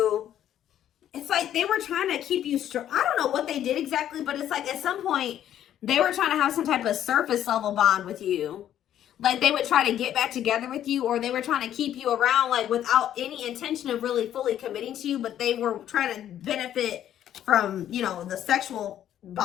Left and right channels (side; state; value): right; quieter; 11.0 dB